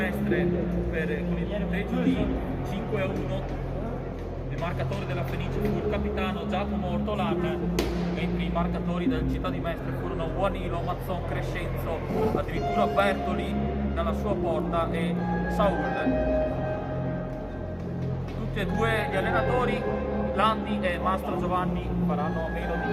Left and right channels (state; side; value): identical; both; correlation 1.00